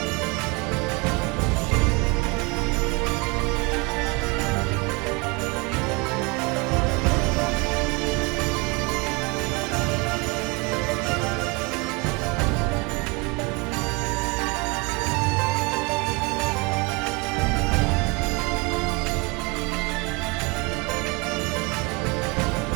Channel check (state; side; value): quieter; left; 28.2 dB